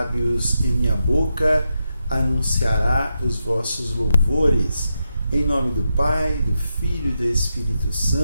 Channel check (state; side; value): inverted; both; correlation -0.86